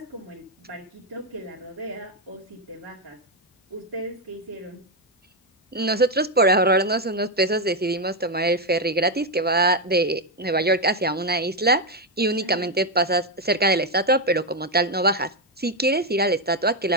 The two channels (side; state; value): both; normal; correlation 0.05